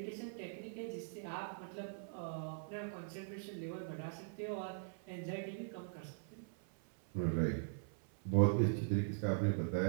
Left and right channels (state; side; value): silent; left; 50 dB below the other